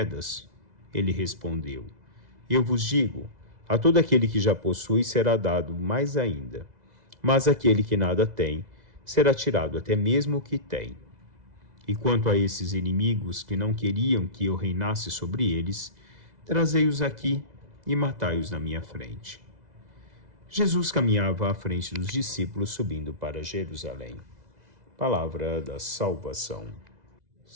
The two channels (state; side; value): late; left; 2.0 ms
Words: Ele respondeu: Eu vos digo, a todo aquele que já possui será dado mais ainda, mas aquele que nada tem, será tirado até mesmo o que tem. E quanto a esses inimigos que não queriam que eu reinasse sobre eles, trazei-os aqui e matai-os na minha frente. Jesus caminhava à frente dos discípulos, subindo para Jerusalém. Palavra da salvação.